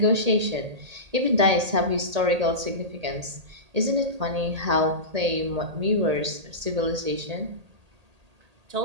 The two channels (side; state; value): left; late; 1.8 ms